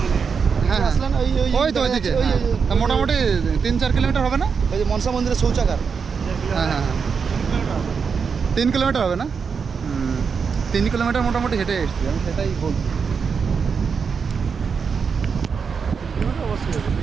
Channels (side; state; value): left; quieter; 5.9 dB